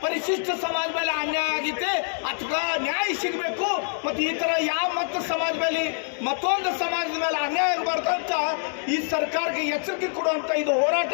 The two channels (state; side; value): silent; right; digital silence